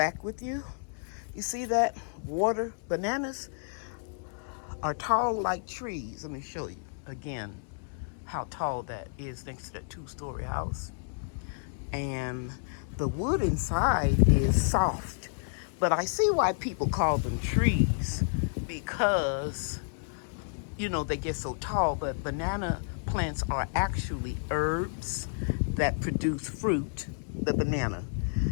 with you. You see that? Water bananas are tall like trees. Let me show you again how tall that is next to that 2-story house. And the wood inside is soft. But I see why people call them trees, because, you know, they get so tall. But banana plants are actually herbs that produce fruit, the banana.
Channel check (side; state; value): right; silent; 57 dB below the other